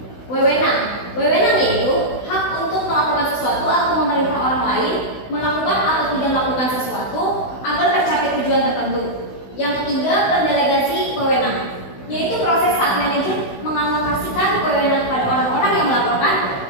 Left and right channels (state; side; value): late; right; 16 ms